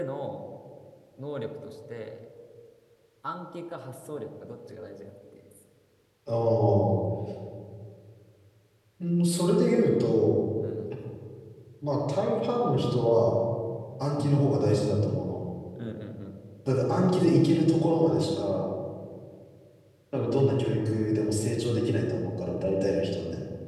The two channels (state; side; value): identical; both; correlation 1.00